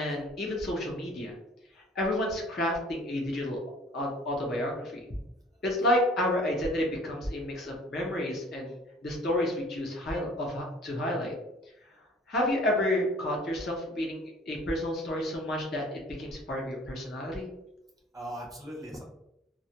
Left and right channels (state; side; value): normal; both; correlation 0.51